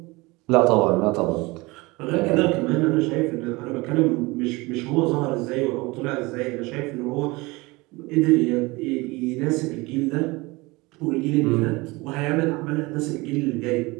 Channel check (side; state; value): left; quieter; 23.4 dB